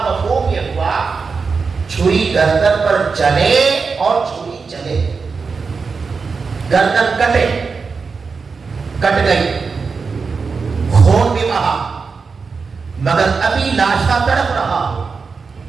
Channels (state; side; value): quieter; left; 4.9 dB